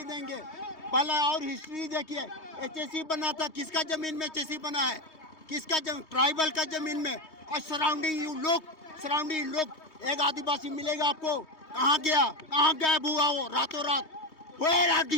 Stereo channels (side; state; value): right; late; 3.2 ms